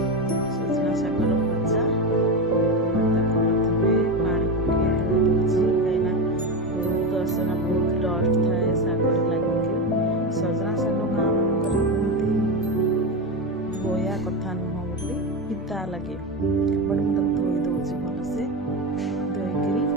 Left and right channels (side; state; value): both; normal; correlation 0.16